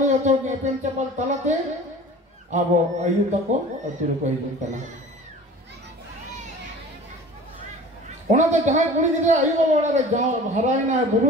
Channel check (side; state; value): both; normal; correlation 0.42